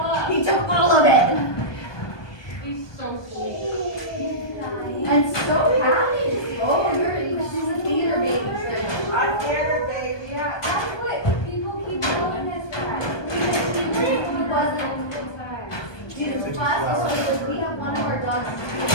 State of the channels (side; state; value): right; late; 1.2 ms